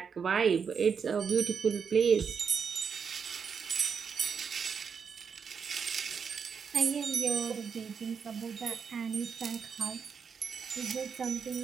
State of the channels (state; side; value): quieter; left; 6.3 dB